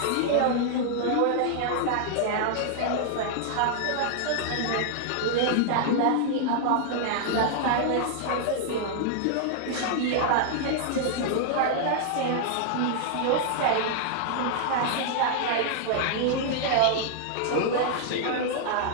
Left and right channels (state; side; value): different; both; correlation -0.01